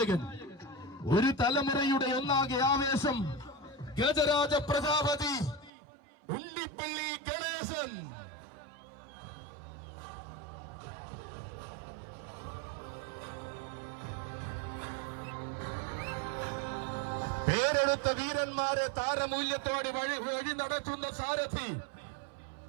ഒരു തലമുറയുടെ ഒന്നാകെ ആവേശം, ഗജരാജ പ്രജാപതി ഉണ്ണിപ്പള്ളി ഗണേശൻ. പേരെടുത്ത വീരന്മാരെ താരമൂല്യത്തോടെ വഴി നടത്തുന്ന സാരഥി,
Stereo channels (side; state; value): left; drops out; at 5.7 s